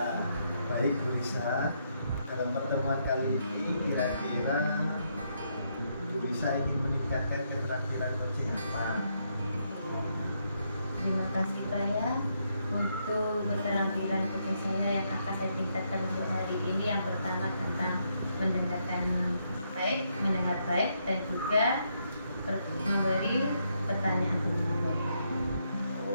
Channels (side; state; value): both; inverted; correlation -0.77